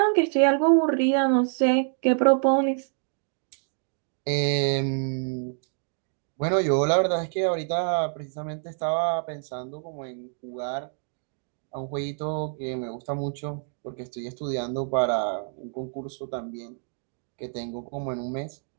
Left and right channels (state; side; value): silent; left; 60 dB below the other